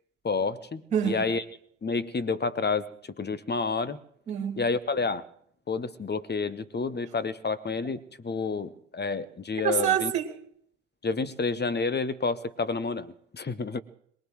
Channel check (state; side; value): normal; both; correlation 0.17